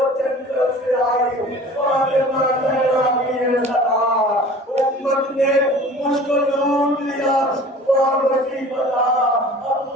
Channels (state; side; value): normal; both; correlation 0.44